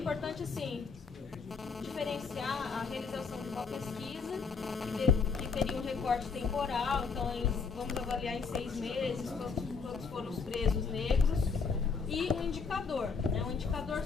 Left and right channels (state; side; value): quieter; right; 5.1 dB